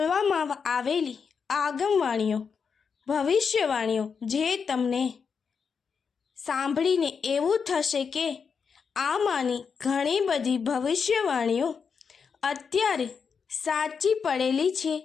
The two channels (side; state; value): right; quieter; 6.0 dB